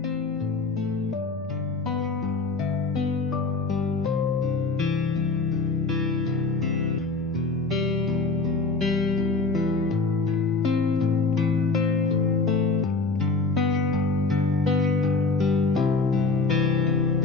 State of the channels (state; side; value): quieter; right; 3.9 dB